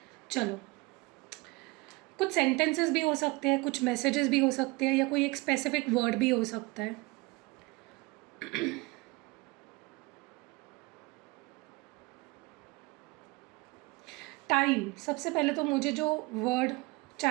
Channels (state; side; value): quieter; left; 24.2 dB